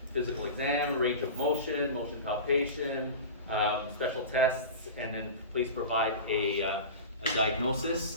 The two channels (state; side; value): inverted; both; correlation -0.31